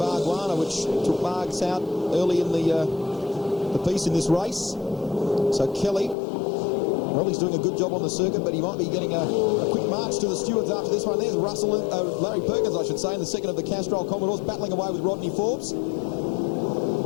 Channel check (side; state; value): right; drops out; at 6.2 s